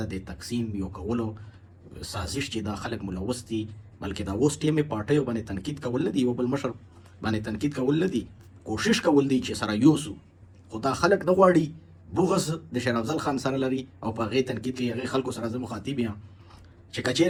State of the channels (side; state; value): both; identical; correlation 1.00